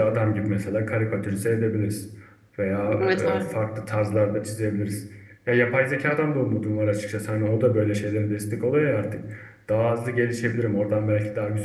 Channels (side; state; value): both; identical; correlation 1.00